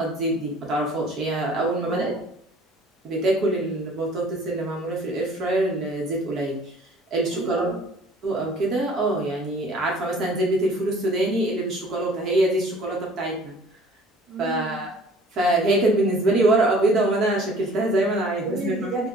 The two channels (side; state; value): both; normal; correlation 0.51